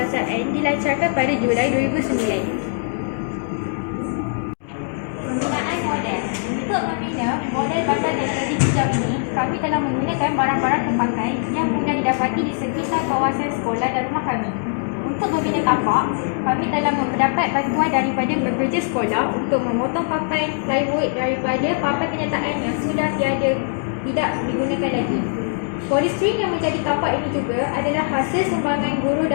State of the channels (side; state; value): right; silent; digital silence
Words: dilancarkan pada Julai 2009. Penggunaan model. Untuk membina model bandar teknologi hijau ini, kami telah menggunakan barang-barang terpakai yang mudah didapati di sekitar kawasan sekolah dan rumah kami. Untuk membina tapak, kami telah mendapat bantuan daripada bekerja sekolah untuk memotong papan plywood daripada papan kenyataan yang sudah tidak digunakan lagi. Polistrin yang menjadi tapak ini juga adalah hasil sumbangan guru